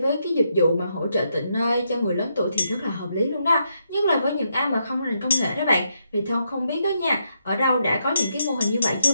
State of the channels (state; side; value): inverted; both; correlation -0.80